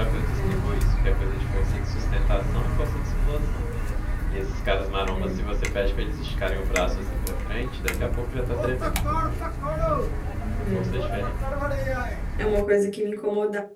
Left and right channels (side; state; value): both; identical; correlation 1.00